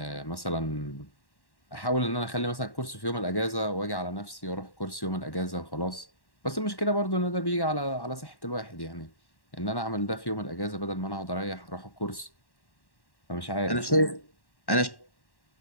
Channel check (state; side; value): late; right; 1.1 ms